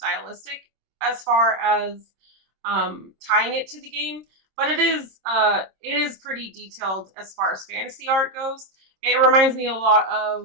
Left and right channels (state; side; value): late; left; 26 ms